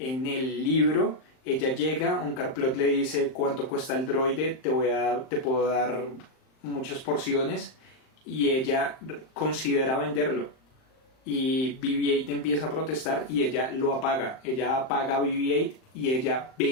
el libro ella llega, Onkar Plutt le dice cuánto cuesta el droide, te puedo dar muchas porciones y ella considera venderlo y BB-8 empieza a protestar y ella lo apaga, ella apaga a BB-8 y ella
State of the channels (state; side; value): late; right; 38 ms